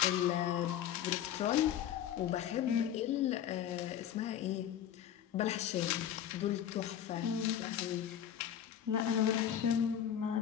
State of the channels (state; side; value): quieter; right; 10.1 dB